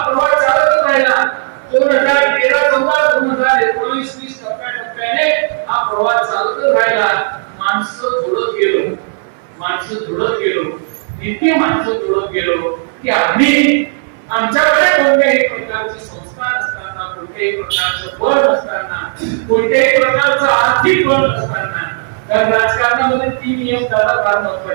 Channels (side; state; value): left; silent; digital silence